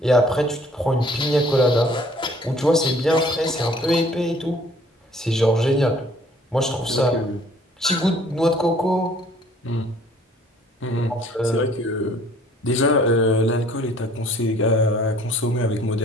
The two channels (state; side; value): normal; both; correlation 0.56